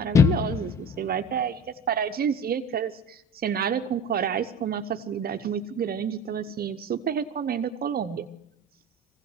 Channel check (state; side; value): normal; both; correlation 0.36